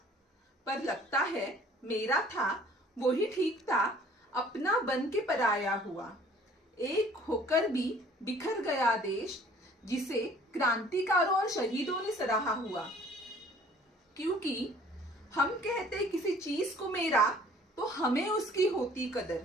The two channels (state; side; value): normal; both; correlation 0.53